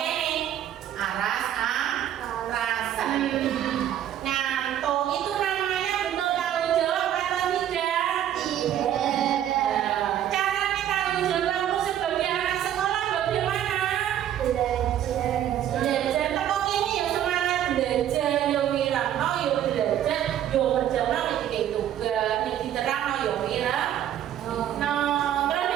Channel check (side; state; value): left; quieter; 11.0 dB